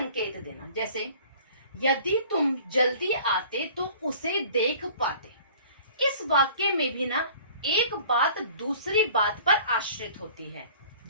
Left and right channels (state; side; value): inverted; both; correlation -0.49